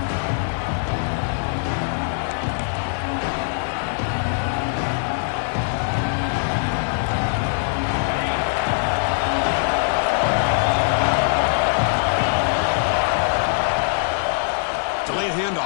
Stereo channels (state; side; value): silent; right; digital silence